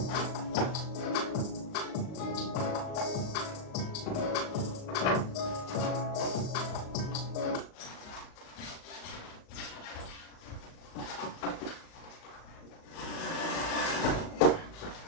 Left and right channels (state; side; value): late; right; 38 ms